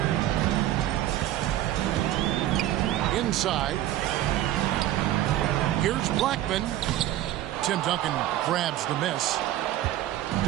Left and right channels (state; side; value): quieter; left; 13.6 dB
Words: Inside. Here's Blackman. Tim Duncan grabs the miss.